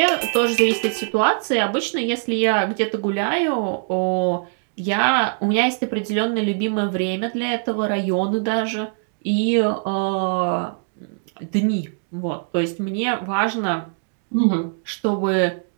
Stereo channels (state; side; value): silent; left; digital silence